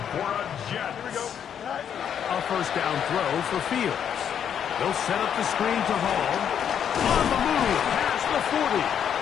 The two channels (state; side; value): quieter; right; 8.6 dB